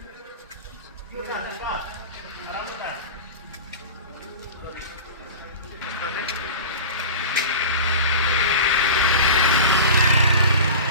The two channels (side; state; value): both; inverted; correlation -0.32